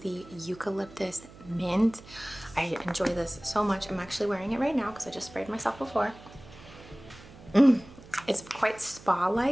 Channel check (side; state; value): right; noise; hum, 20 dB below the sound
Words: eucalyptus mint. I enjoy this so much. I'm actually wearing it right now because I just sprayed myself before. It's quite